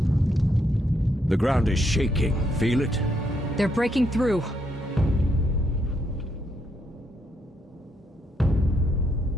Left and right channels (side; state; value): both; normal; correlation 0.76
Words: The ground is shaking. Feel it? They're breaking through.